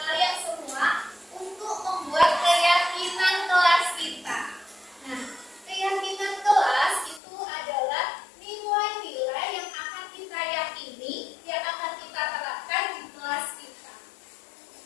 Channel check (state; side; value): drops out; right; at 7.2 s